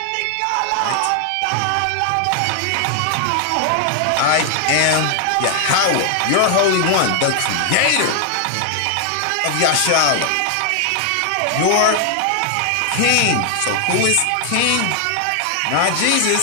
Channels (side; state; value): both; different; correlation 0.00